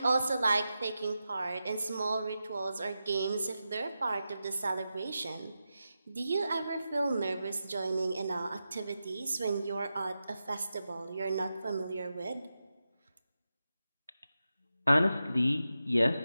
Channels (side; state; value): both; inverted; correlation -0.90